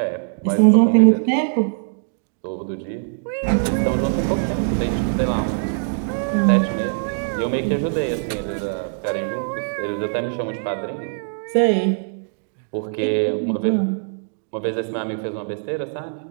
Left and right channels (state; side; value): silent; left; digital silence